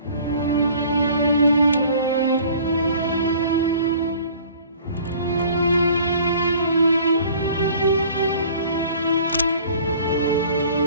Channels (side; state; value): both; inverted; correlation -0.50